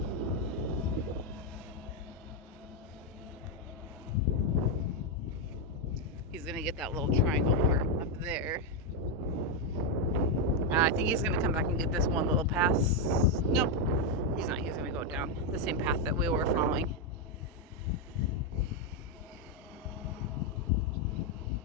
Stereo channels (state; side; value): normal; both; correlation 0.03